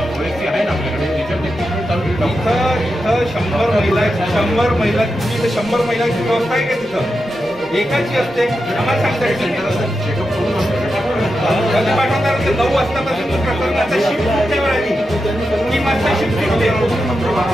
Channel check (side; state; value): both; normal; correlation 0.88